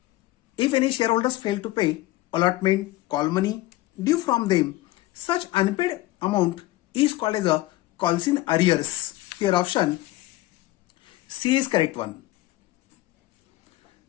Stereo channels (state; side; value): quieter; right; 17.5 dB